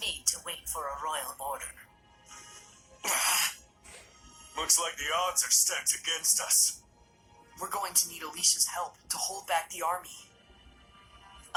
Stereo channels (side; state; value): both; identical; correlation 1.00